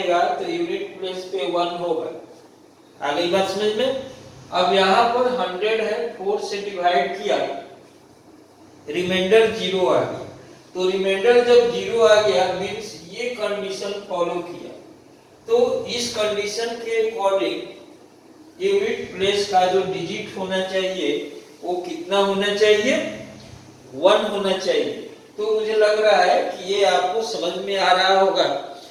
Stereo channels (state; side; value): identical; both; correlation 1.00